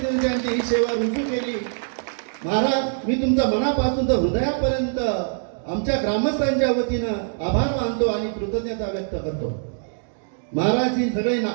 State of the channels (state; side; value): silent; left; digital silence